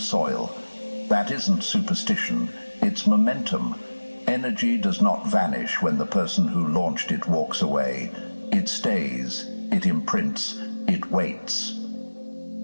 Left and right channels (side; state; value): both; inverted; correlation -1.00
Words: That isn't superstition, it's momentum. Energy does not vanish when the person who launched it walks away. It stays, it imprints, it waits.